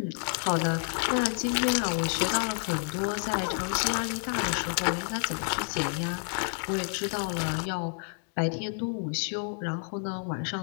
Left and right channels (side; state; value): right; silent; 58 dB below the other